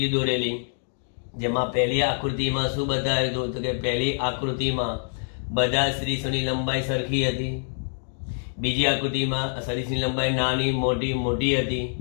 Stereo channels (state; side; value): silent; right; digital silence